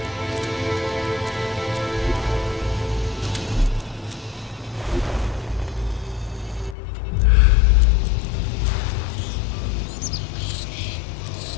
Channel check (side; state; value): right; drops out; at 6.8 s